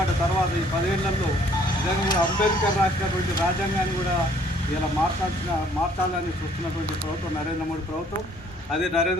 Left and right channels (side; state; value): both; normal; correlation 0.60